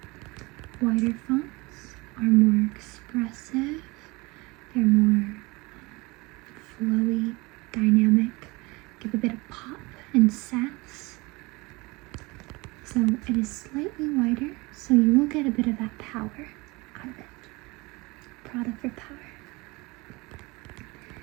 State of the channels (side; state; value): left; quieter; 24.6 dB